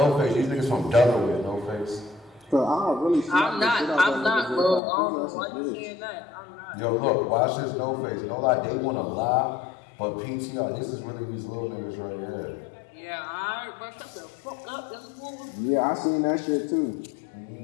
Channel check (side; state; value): right; drops out; at 4.8 s